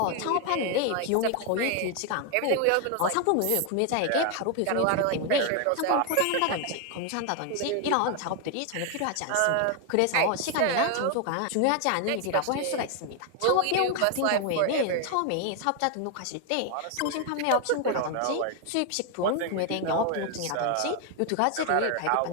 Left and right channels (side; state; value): both; different; correlation 0.01